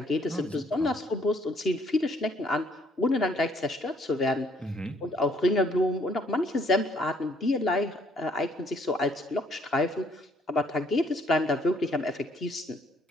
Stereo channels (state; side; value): normal; both; correlation 0.64